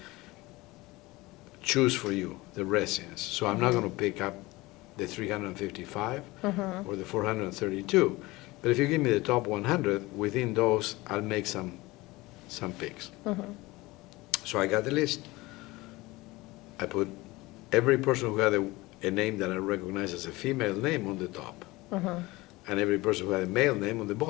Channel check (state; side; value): quieter; right; 21.0 dB